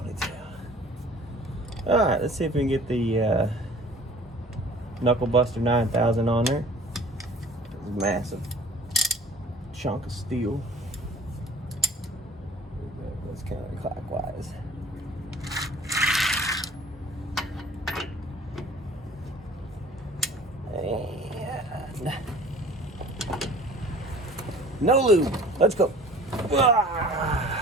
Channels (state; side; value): normal; both; correlation 0.48